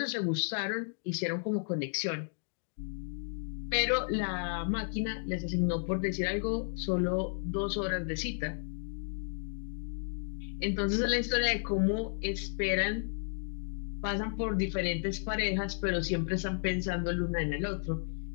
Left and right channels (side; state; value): right; silent; digital silence